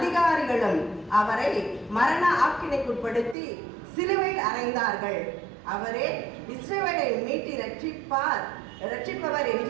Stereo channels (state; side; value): drops out; left; at 3.4 s